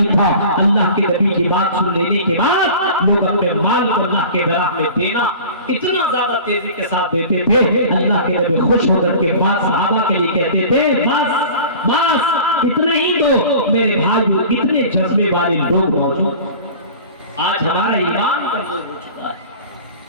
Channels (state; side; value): inverted; both; correlation -0.40